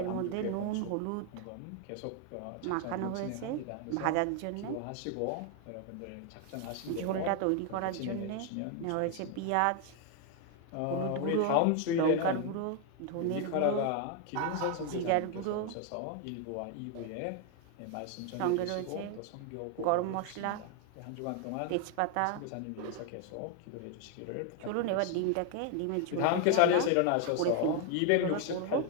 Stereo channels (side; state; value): both; different; correlation 0.01